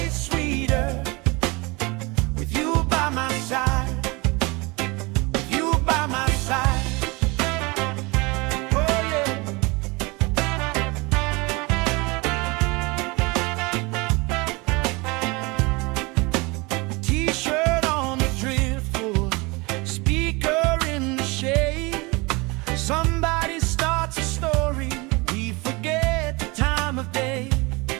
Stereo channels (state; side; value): quieter; left; 25.9 dB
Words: sweeter with you by my side, with you by my side. Oh yeah. T-shirt on the driftwood, speaker in the shade. Somebody starts a story, we forget the time of day.